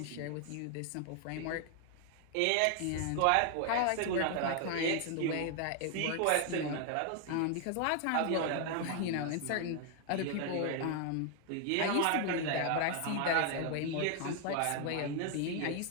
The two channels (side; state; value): both; different; correlation 0.00